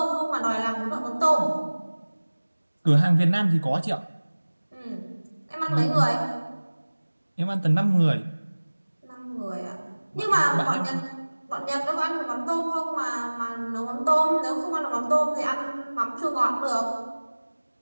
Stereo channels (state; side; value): inverted; both; correlation -1.00